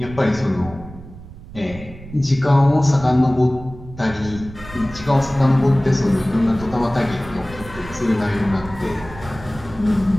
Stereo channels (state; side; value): noise; right; rumble, 16 dB below the sound